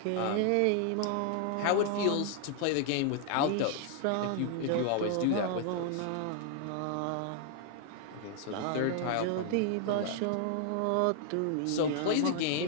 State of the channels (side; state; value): both; different; correlation 0.00